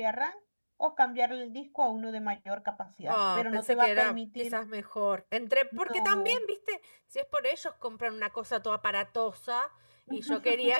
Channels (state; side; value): inverted; both; correlation -1.00